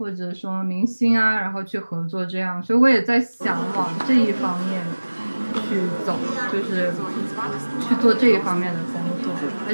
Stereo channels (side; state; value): both; inverted; correlation -1.00